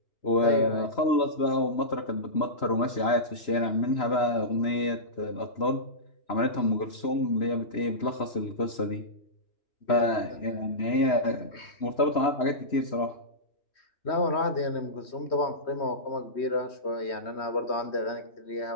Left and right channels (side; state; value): right; late; 3.0 ms